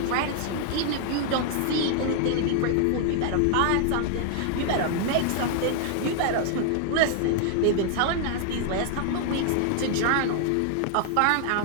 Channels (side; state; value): both; different; correlation 0.00